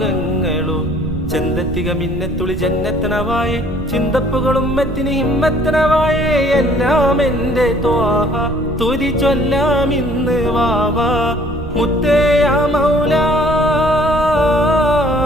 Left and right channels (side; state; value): right; noise; rumble, 10 dB below the sound